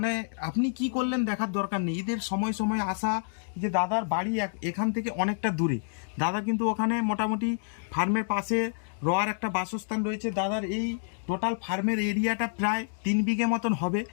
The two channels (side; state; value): right; silent; digital silence